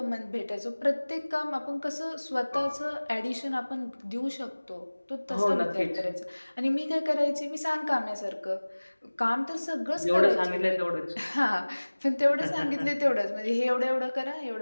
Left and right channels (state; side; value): inverted; both; correlation -1.00